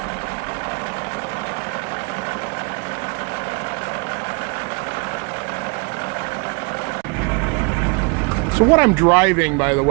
So what I'm driving, by the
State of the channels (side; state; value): left; quieter; 32.6 dB